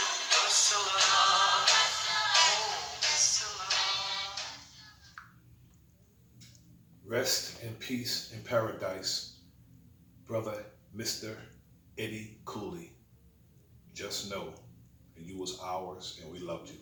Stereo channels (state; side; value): identical; both; correlation 1.00